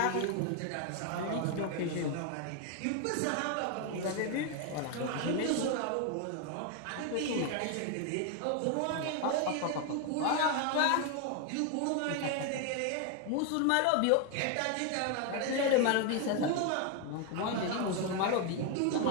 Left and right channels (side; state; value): both; different; correlation 0.01